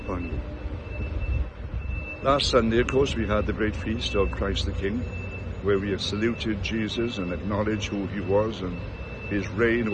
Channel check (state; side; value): identical; both; correlation 1.00